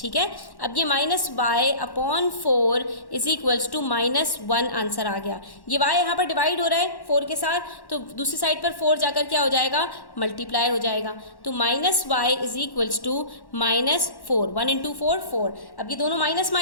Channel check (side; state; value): right; late; 1.1 ms